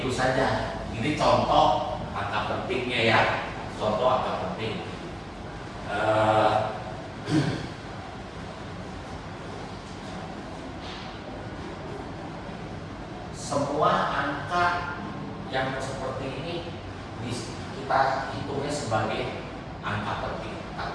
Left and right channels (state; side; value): identical; both; correlation 1.00